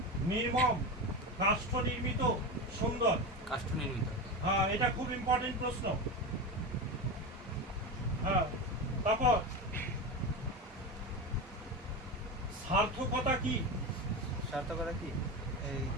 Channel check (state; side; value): normal; both; correlation 0.21